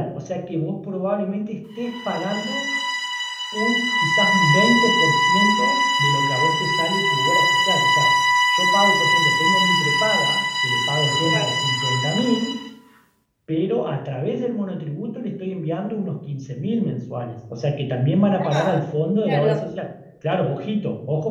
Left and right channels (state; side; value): identical; both; correlation 1.00